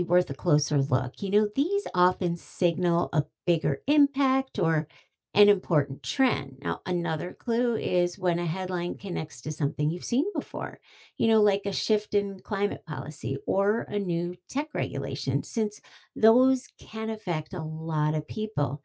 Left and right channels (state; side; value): identical; both; correlation 1.00